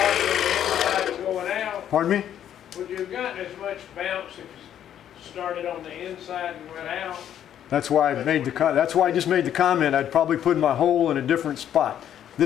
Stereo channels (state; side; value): quieter; right; 10.3 dB